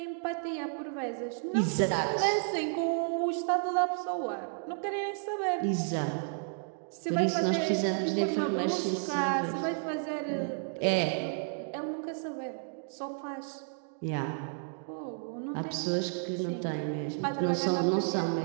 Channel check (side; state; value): left; silent; digital silence